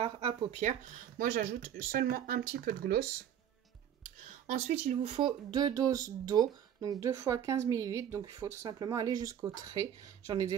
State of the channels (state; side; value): quieter; left; 9.5 dB